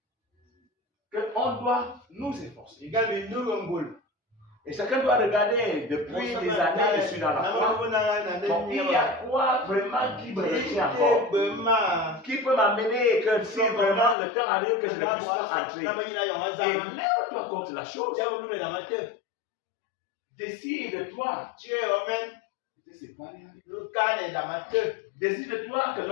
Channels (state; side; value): drops out; right; at 14.2 s